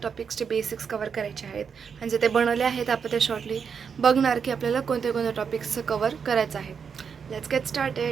टॉपिक्सचे बेसिक्स कवर करायचे आहेत. म्हणजे ते बनवले आहेत आपण ते शॉर्टली बघणार की आपल्याला कोणत्या कोणत्या टॉपिक्सचं कवर करायचं आहे. Let's get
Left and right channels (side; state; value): left; quieter; 6.5 dB